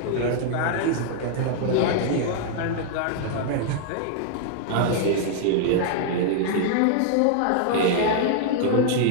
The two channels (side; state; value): both; different; correlation -0.01